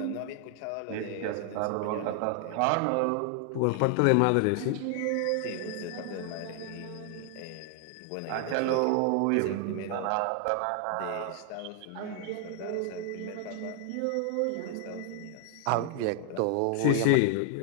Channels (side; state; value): both; different; correlation 0.00